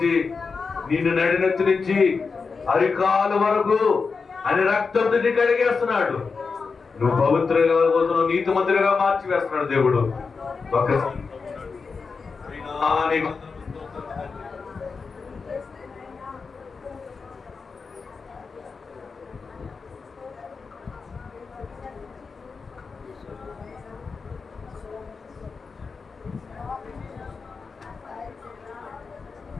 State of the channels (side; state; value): right; quieter; 4.9 dB